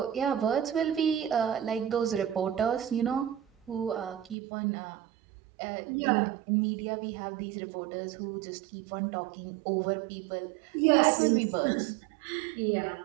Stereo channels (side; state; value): left; drops out; at 4.4 s